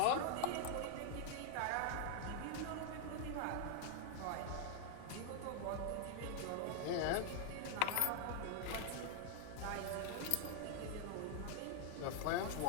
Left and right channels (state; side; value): different; both; correlation 0.00